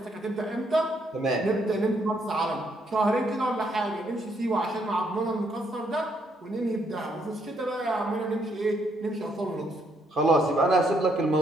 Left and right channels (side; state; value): both; normal; correlation 0.73